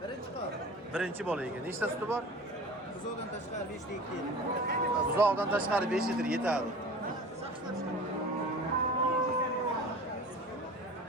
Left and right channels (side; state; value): both; normal; correlation 0.39